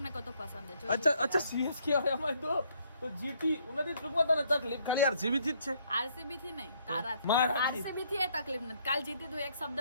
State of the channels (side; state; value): both; inverted; correlation -0.67